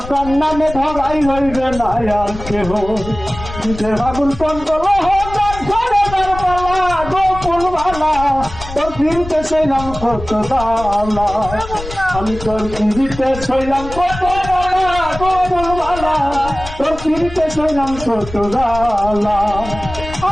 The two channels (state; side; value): noise; left; rumble, 11 dB below the sound